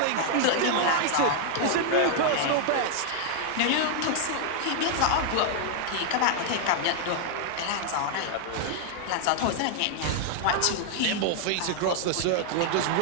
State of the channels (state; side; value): different; both; correlation 0.00